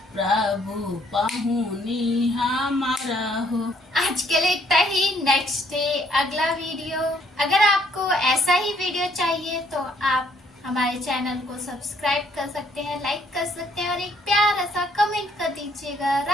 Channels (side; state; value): both; normal; correlation 0.66